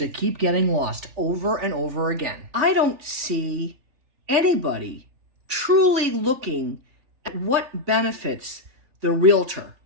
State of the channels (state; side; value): late; left; 3.4 ms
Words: keep getting lost over and over again. I don't see anybody truly looking at what benefits the realtor